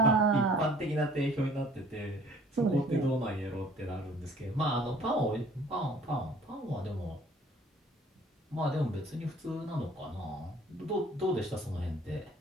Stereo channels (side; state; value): both; normal; correlation 0.54